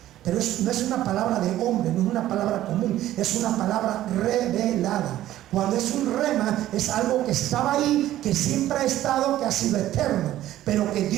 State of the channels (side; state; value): left; quieter; 13.7 dB